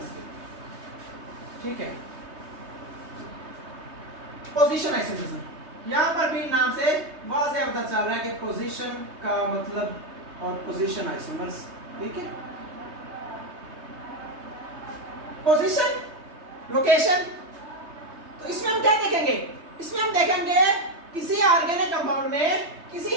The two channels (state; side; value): late; left; 3.2 ms